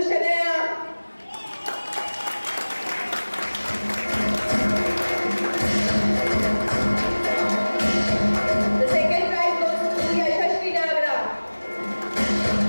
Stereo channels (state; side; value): inverted; both; correlation -1.00